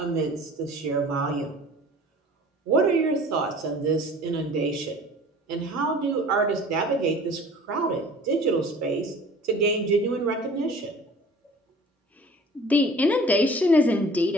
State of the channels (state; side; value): normal; both; correlation 0.46